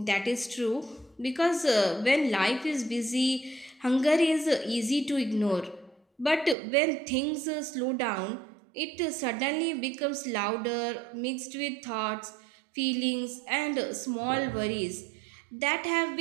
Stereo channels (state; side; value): drops out; left; at 6.6 s